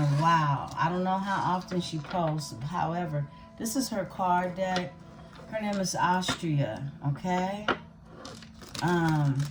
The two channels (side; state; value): both; identical; correlation 1.00